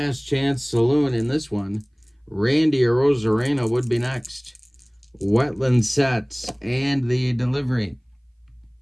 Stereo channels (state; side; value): identical; both; correlation 1.00